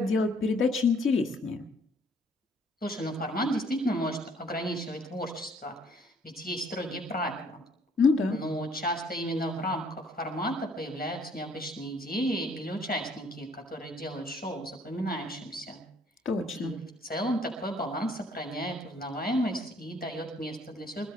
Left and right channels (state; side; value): normal; both; correlation 0.62